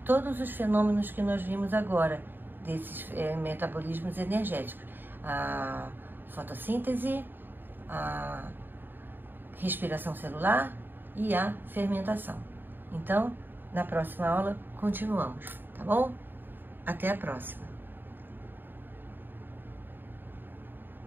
os fenômenos que nós vimos agora, desses metabolismos energéticos. A fotossíntese, a respiração celular e a fermentação. Então, na próxima aula, continuamos, tá bom? Até a próxima!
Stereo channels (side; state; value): left; late; 0.094 ms